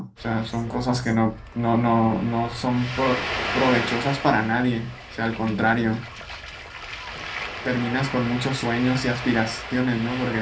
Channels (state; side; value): identical; both; correlation 1.00